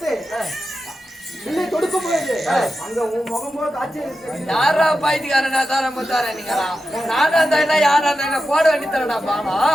இல்லை தொடுக்க முடியாது. அங்க உன் முகம் போல காட்சி இருக்கு. யாரா பாய்த்துக்காரனா தார முத்தாரா நீங்களா? நானா இருந்தா யாரா இருந்தா போட வேண்டி தரடா பாமா.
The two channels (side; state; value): both; normal; correlation 0.90